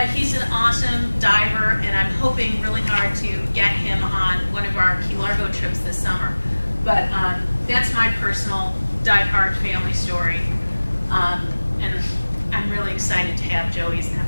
he's an awesome diver, and I'm hoping really hard to get him on one of our Key Largo trips this summer. But that's my personal Diveheart family story. And I'm really excited to have Joey's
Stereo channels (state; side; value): inverted; both; correlation -1.00